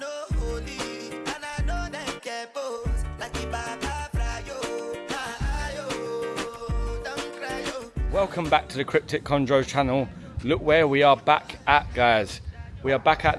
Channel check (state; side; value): identical; both; correlation 1.00